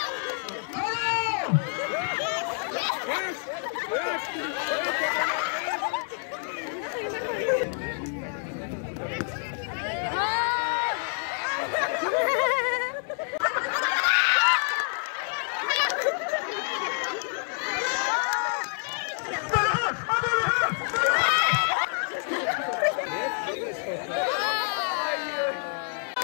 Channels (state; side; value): silent; right; 60 dB below the other